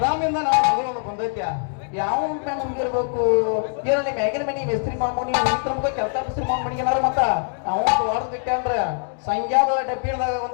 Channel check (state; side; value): silent; right; 59 dB below the other